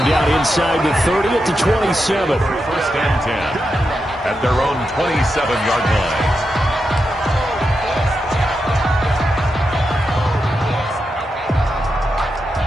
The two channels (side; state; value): both; normal; correlation 0.87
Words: down inside the 30 at the 27. First and 10 at their own 27-yard line.